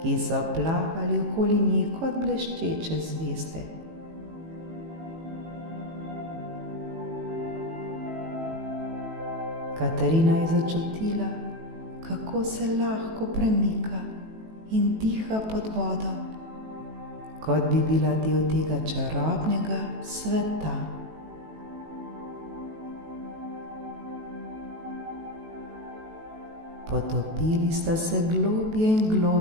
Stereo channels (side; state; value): left; late; 18 ms